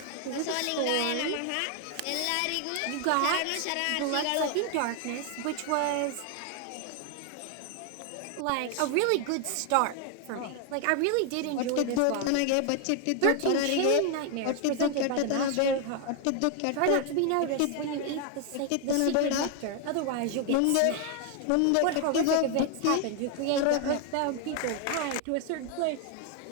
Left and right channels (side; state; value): both; different; correlation 0.00